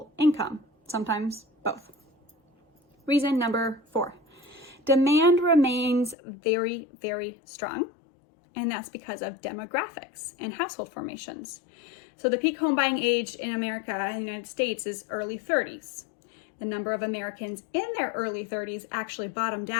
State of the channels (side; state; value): right; drops out; at 6.2 s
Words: income, sometimes both. Reason number 4, demand remains very, very strong, and that's because of demographics and household formations. So the peak home buying age in America, in the United States, is early 30s. The number of Americans in their early 30s actually bottomed